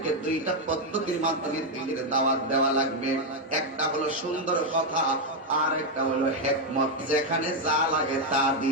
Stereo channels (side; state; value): both; normal; correlation 0.03